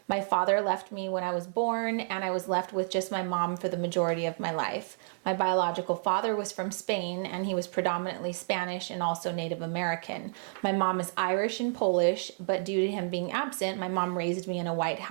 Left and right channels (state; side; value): silent; left; digital silence